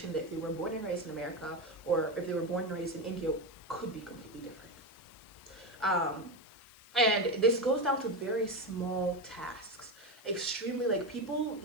that if they were born and raised in America or if they were born and raised in India could be completely different. And this goes down to very small tasks. Extremely, like, people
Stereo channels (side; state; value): left; noise; hiss, 25 dB below the sound